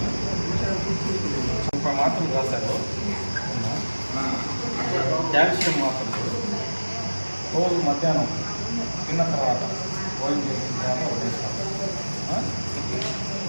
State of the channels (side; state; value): both; inverted; correlation -1.00